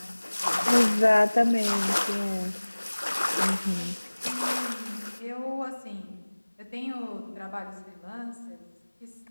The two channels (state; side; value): inverted; both; correlation -1.00